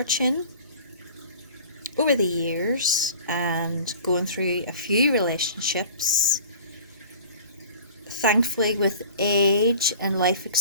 over the years and going through a few relationships, thankfully with age and life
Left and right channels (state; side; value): inverted; both; correlation -0.45